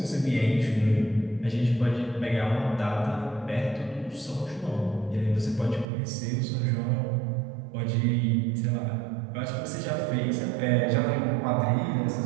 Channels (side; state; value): left; drops out; at 5.9 s